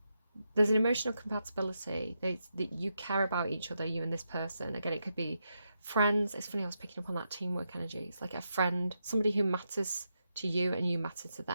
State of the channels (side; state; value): both; inverted; correlation -0.84